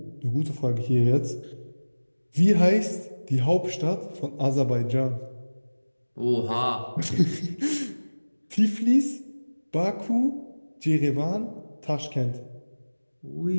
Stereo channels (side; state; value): both; inverted; correlation -1.00